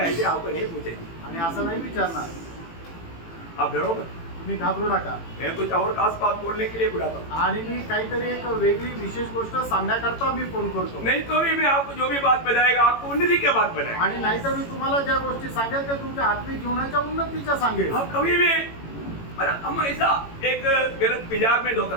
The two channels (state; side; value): late; right; 18 ms